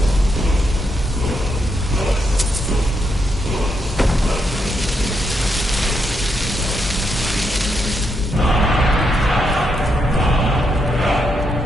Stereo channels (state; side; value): normal; both; correlation 0.80